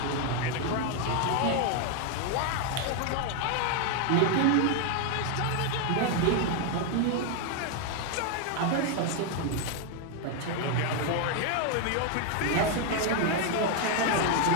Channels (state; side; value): different; both; correlation 0.00